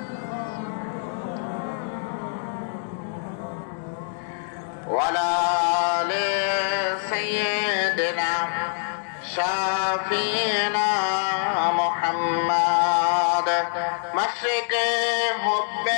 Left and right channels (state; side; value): silent; right; digital silence